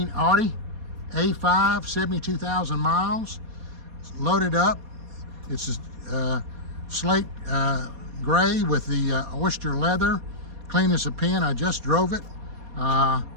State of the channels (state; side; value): late; left; 4.2 ms